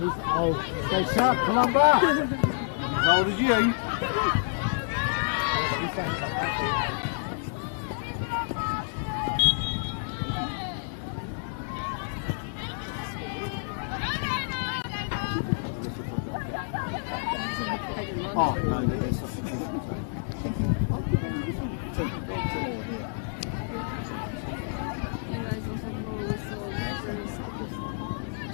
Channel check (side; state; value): right; silent; 59 dB below the other